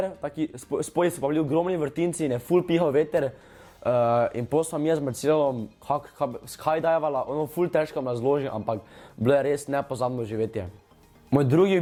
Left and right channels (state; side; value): identical; both; correlation 1.00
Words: spodaj so pa bili ogromni vrtinci in je ful pihal veter. In potem sem jaz z Marcelom skydajvala, ono ful težko me razložim, ampak bilo je res nepozabno živetje. Moj drugi